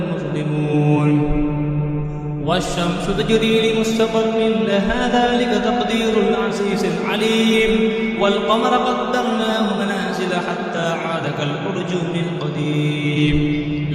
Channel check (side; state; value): both; identical; correlation 1.00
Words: مظلمون. والشمس تجري لمستقر لها ذلك تقدير العزيز العليم. والقمر قدرناه منازل حتى عاد كالأرجون القديم.